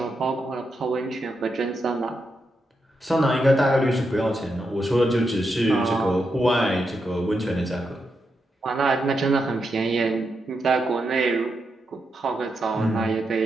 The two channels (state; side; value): normal; both; correlation 0.84